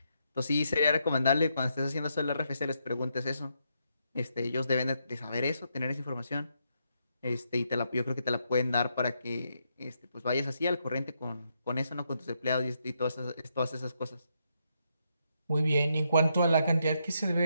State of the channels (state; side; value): inverted; both; correlation -0.79